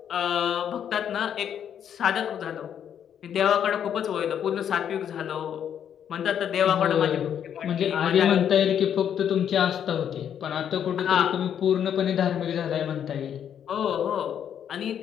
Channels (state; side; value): quieter; right; 9.0 dB